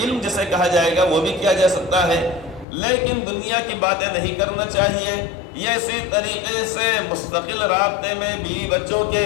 علم جسے کہا جائے گا، وہ بھی کیا جا سکتا ہے، لیکن دنیا کی باتیں نہیں کرنا چاہیے۔ یہ اسی طریقے سے مستقل رابطے میں بیوی بچوں کے،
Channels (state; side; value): drops out; right; at 2.7 s